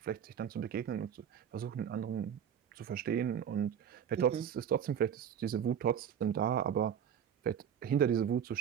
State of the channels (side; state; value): left; quieter; 8.6 dB